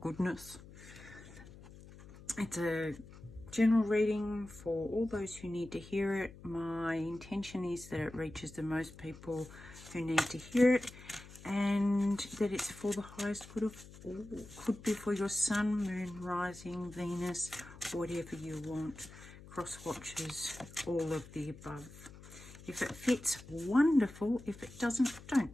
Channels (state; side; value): noise; left; hum, 18 dB below the sound